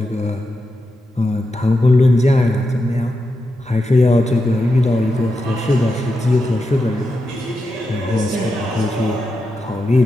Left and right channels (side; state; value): both; normal; correlation 0.87